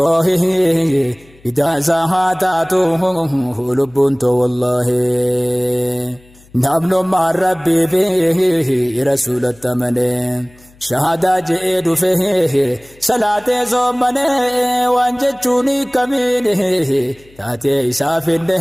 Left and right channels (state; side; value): noise; left; hum, 28 dB below the sound